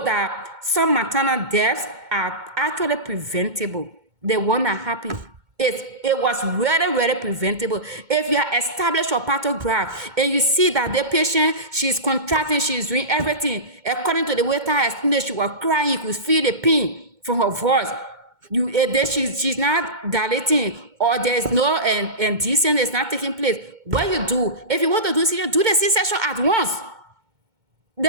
that some maternal deaths are actually preventable, the one that happened, it was really, really preventable. If you are established your pathograph and you see that the patient, she's contracting, she's doing everything, according to the way I explained, she was crying, you could feel the pain from her voice. Then she's not dilating, or there's no indecent is not taking place. What you do, if you want to do C-section, do the C-section at once.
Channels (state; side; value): late; left; 2.2 ms